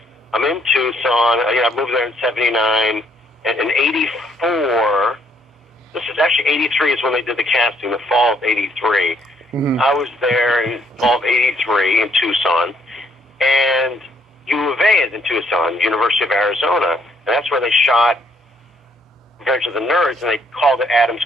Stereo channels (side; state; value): both; normal; correlation 0.68